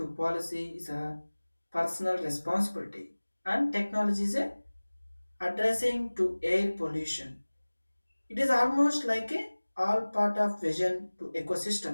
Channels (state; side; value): inverted; both; correlation -1.00